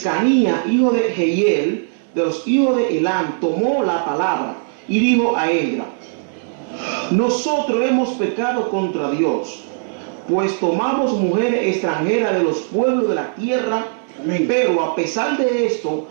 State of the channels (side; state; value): left; silent; 56 dB below the other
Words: hijo de Jehiel, de los hijos de Elam, tomó la palabra y dijo a Esdras: nosotros hemos pecado contra Dios, pues tomamos mujeres extranjeras de los pueblos de la tierra. Amén. Pero a pesar de esto,